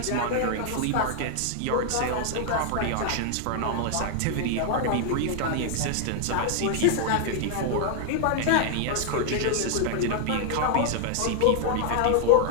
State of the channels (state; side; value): different; both; correlation 0.00